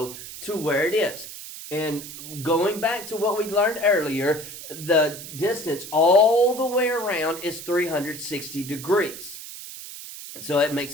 to where it is. And going back to what we learned earlier, the distance all the way around is 360 degrees. So it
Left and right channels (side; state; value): right; noise; hiss, 12 dB below the sound